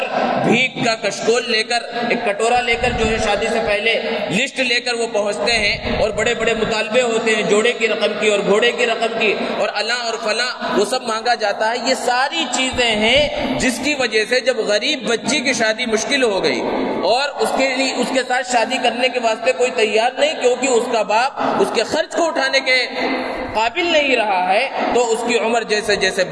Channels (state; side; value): identical; both; correlation 1.00